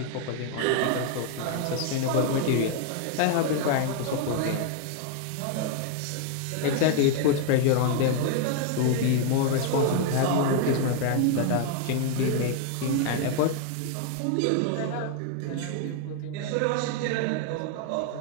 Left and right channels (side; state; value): both; different; correlation 0.00